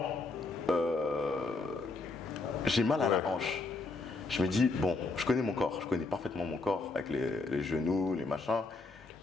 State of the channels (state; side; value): quieter; right; 3.5 dB